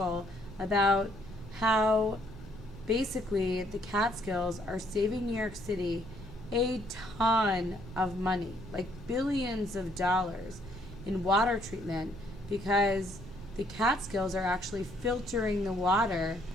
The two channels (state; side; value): noise; right; rumble, 15 dB below the sound